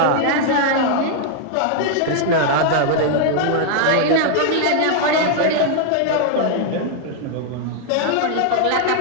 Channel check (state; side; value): different; both; correlation 0.00